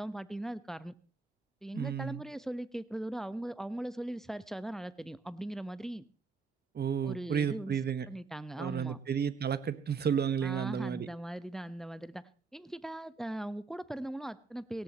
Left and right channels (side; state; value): left; quieter; 4.9 dB